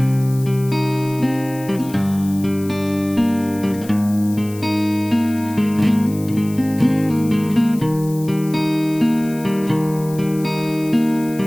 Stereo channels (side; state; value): left; noise; hiss, 18 dB below the sound